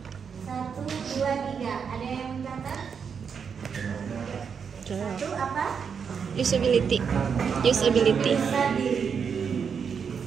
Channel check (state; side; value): quieter; left; 6.6 dB